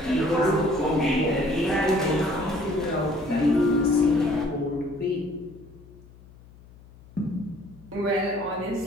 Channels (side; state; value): left; noise; hum, 23 dB below the sound